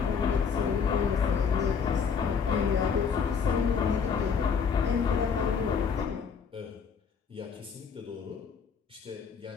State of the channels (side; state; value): right; quieter; 6.2 dB